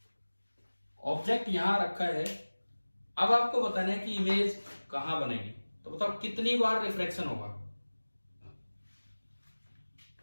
ऑब्जेक्ट यहां रखा है। अब आपको बताना है कि इमेज कहां बनेगी। तो बताओ कितनी बार रिफ्रैक्शन होगा,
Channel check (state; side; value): inverted; both; correlation -1.00